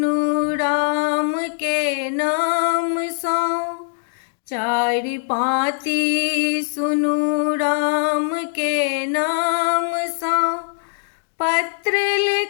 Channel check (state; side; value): silent; right; 65 dB below the other